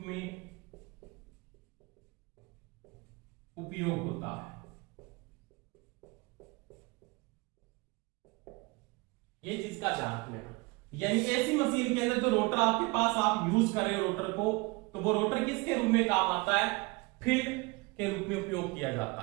उपयोग होता है। ये चीज का ध्यान रखना, यानी एसी मशीन के अंदर जो रोटर आपके पास आप यूज कर रहे हो रोटर को, तो वो रोटर किसके रूप में काम आता है, फील्ड के रूप में उपयोग किया जाता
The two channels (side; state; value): left; quieter; 25.7 dB